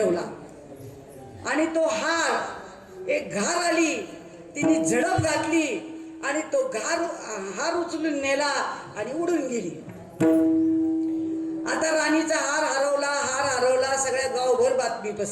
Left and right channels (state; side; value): identical; both; correlation 1.00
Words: आणि तो हार, एक घार आली, तिने झडप घातली आणि तो हार उचलून नेला आणि उडून गेली. आता राणीचा हार हरवला, सगळ्या गावभर बातमी